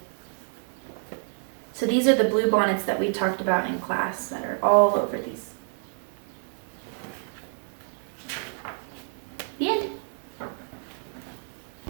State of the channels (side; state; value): left; silent; 56 dB below the other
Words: So these are the blue bonnets that we talked about in class that are all over these